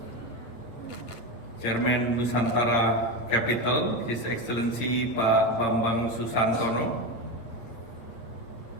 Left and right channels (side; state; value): right; late; 8.4 ms